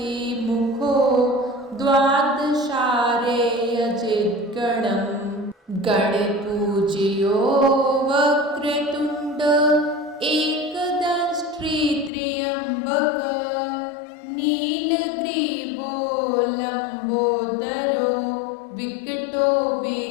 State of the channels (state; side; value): drops out; right; at 12.1 s